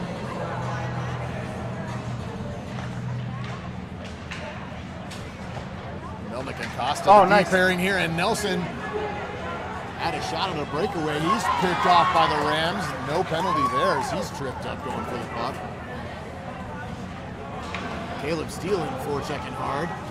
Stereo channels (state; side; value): identical; both; correlation 1.00